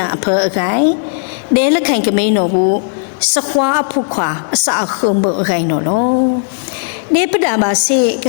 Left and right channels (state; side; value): silent; right; 63 dB below the other